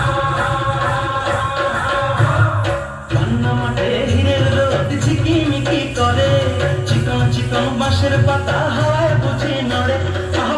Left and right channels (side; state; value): both; identical; correlation 1.00